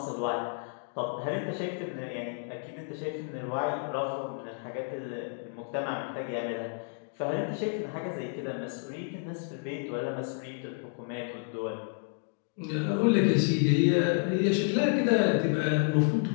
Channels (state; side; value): silent; right; 57 dB below the other